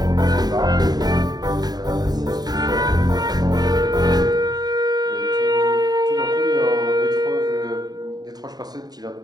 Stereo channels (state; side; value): late; left; 0.19 ms